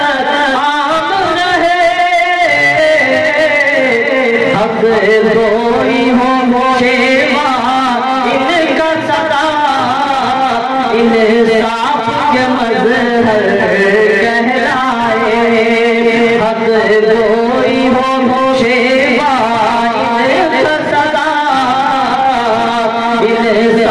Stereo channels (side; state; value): both; identical; correlation 1.00